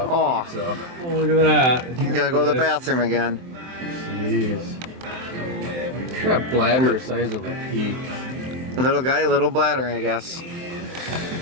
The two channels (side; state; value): left; late; 23 ms